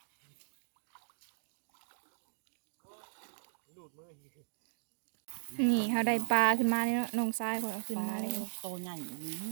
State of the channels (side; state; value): left; silent; digital silence